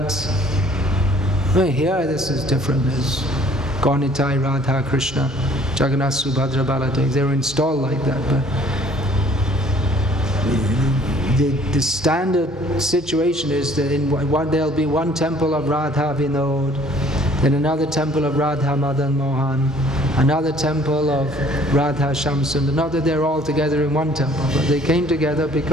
well, here this is different. There's Gaunitai, Radha, Krishna, Jagannath, Subhadra, Baladev. They were installed like that. But the standard situation is that there'll be one temple of Radha Vinod, then another temple of Radha Madan Mohan, another temple of Radha Shamsund. Not that they're all together in one temple, but they came together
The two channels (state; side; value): normal; both; correlation 0.56